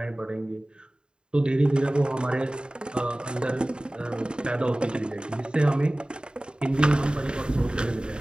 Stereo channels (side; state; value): left; late; 0.050 ms